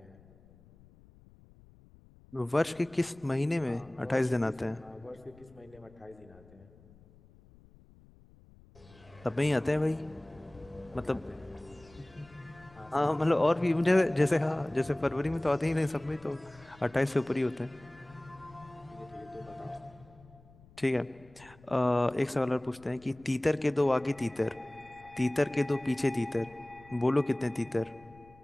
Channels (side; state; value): left; noise; rumble, 25 dB below the sound